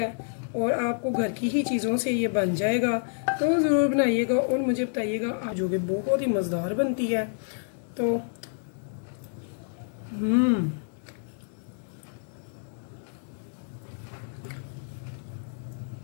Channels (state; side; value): silent; right; digital silence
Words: और आपको घर की ही चीज़ों से ये बन जाएगा। तो ज़रूर बनाइएगा और मुझे बताइएगा आप, जो कि बहुत ही मज़ेदार बनती है। तो